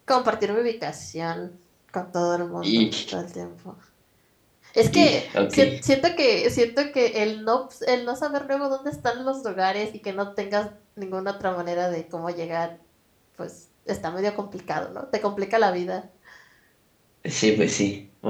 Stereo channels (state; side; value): identical; both; correlation 1.00